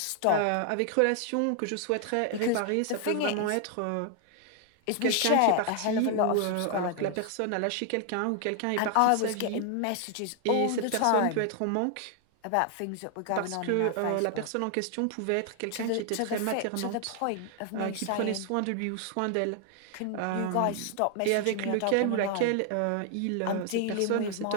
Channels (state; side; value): different; both; correlation 0.00